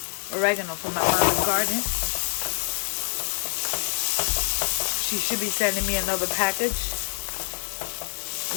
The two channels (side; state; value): right; silent; digital silence